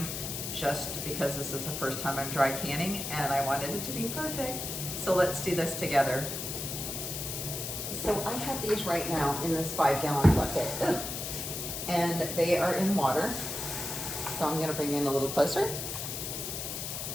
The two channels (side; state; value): left; noise; hiss, 5 dB below the sound